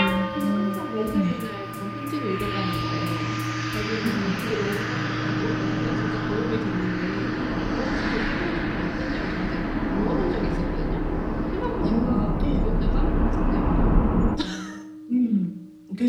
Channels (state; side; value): identical; both; correlation 1.00